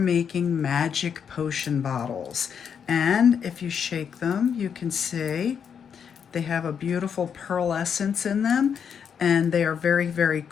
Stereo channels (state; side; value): quieter; right; 7.3 dB